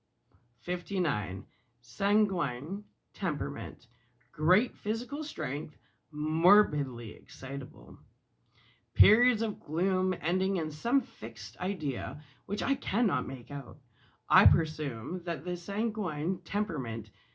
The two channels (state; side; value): identical; both; correlation 1.00